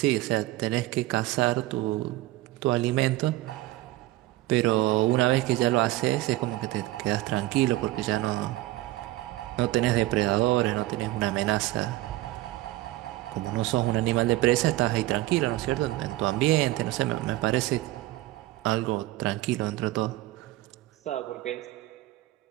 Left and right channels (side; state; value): left; quieter; 17.3 dB